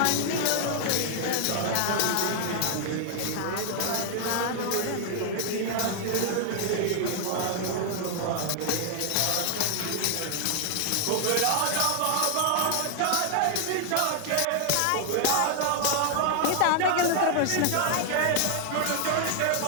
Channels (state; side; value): different; both; correlation 0.00